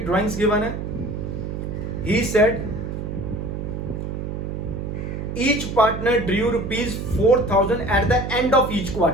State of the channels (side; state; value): right; noise; hum, 5 dB below the sound